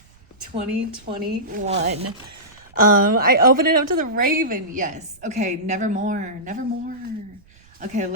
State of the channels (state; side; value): noise; right; rumble, 28 dB below the sound